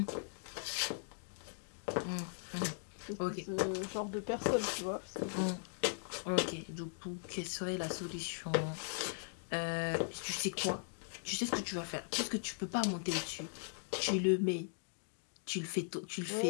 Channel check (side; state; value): right; silent; digital silence